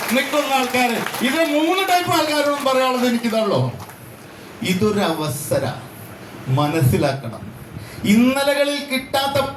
നിൽക്കുന്ന ആൾക്കാർ. ഇത് 3 ടൈപ്പ് ആൾക്കാരോടും പറയാനുള്ളത് എനിക്കിതല്ലോ. ഇതൊരു അവസര മനസ്സിലാക്കണം. ഇന്നലകളിൽ കിട്ടാത്ത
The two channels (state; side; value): identical; both; correlation 1.00